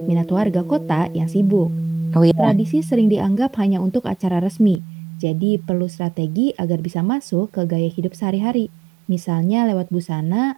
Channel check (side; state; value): left; drops out; at 4.8 s